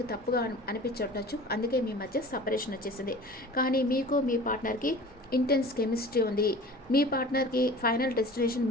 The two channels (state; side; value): normal; both; correlation 0.41